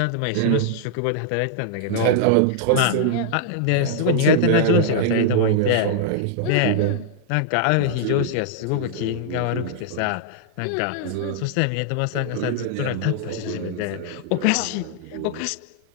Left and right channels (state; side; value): different; both; correlation -0.01